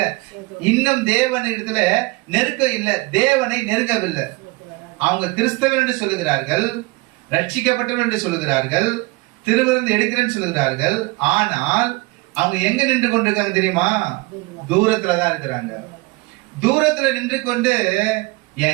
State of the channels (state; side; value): quieter; left; 23.6 dB